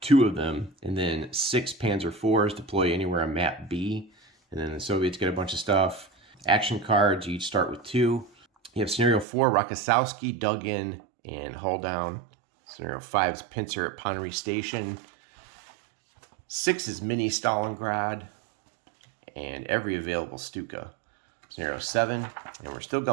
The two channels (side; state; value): left; drops out; at 9.2 s